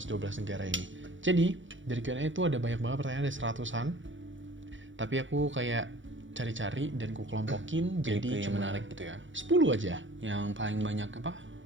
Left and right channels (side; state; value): left; late; 0.56 ms